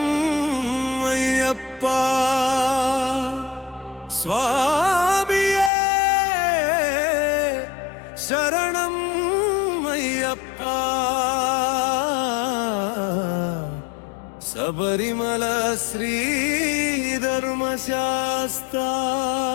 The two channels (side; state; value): right; drops out; at 5.7 s